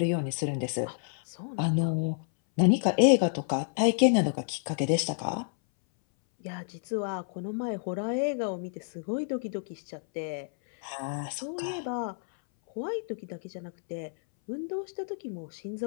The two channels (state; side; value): silent; right; 58 dB below the other